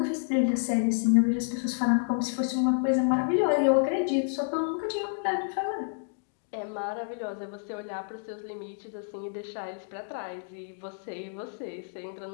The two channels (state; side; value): silent; right; digital silence